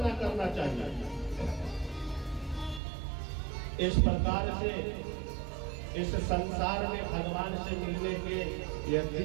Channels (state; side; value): drops out; left; at 2.8 s